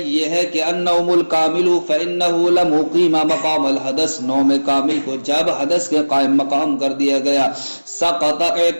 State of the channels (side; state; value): both; inverted; correlation -1.00